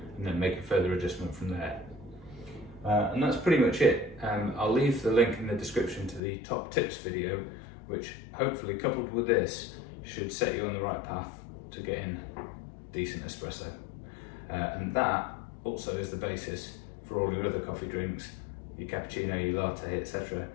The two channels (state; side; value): drops out; right; at 6.2 s